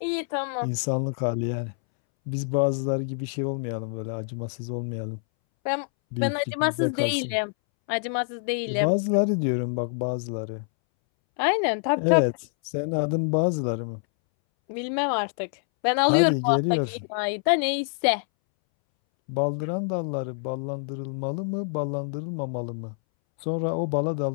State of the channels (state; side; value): silent; right; 61 dB below the other